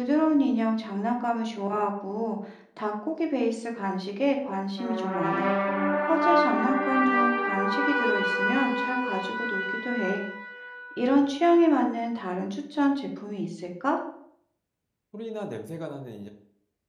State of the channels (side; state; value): both; identical; correlation 1.00